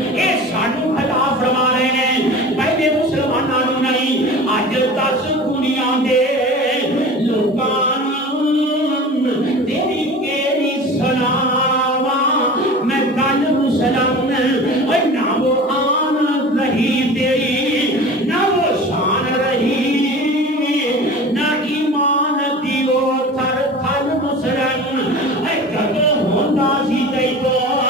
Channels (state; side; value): normal; both; correlation 0.37